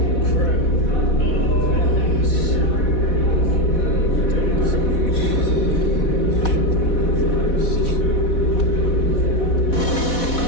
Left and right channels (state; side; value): late; right; 4.1 ms